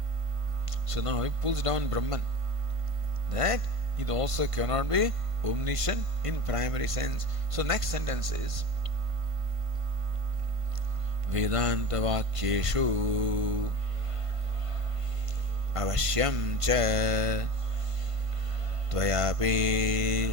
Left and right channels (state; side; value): late; left; 1.5 ms